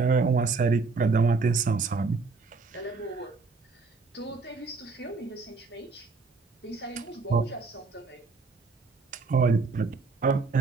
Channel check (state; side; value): quieter; left; 4.2 dB